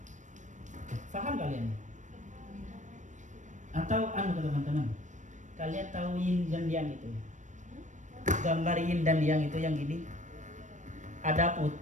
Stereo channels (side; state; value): left; late; 0.35 ms